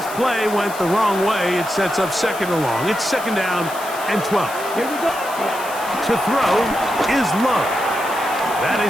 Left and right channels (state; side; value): noise; left; hiss, 14 dB below the sound